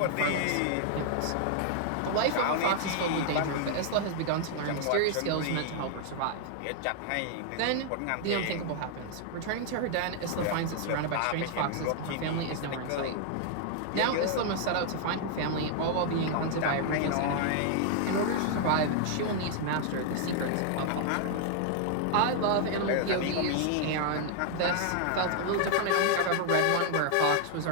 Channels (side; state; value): both; different; correlation 0.00